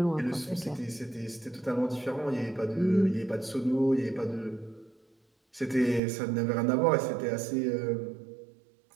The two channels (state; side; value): drops out; left; at 6.0 s